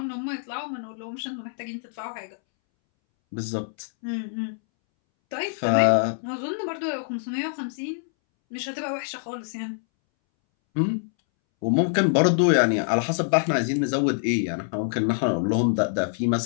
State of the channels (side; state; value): right; silent; 62 dB below the other